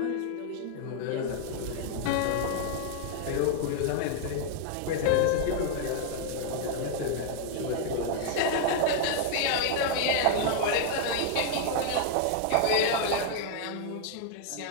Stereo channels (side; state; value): both; different; correlation 0.00